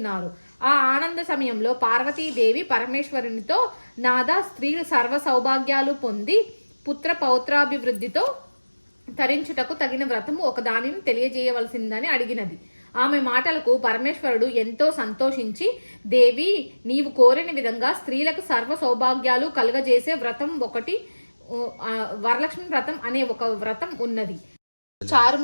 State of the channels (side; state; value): both; inverted; correlation -1.00